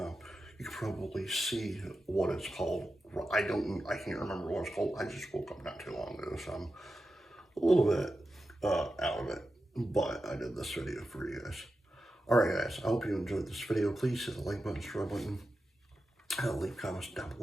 you can probably see what it's called. I can't remember what it's called. I just woke up not too long ago, so I'm a little bit out of it, but I did this video for you guys. Alright guys, I hope you enjoyed this video. Please hit the like button, subscribe button, leave comments down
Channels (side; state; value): both; normal; correlation 0.91